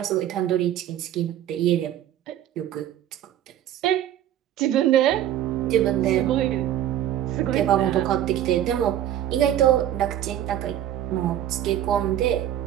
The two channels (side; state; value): left; quieter; 11.5 dB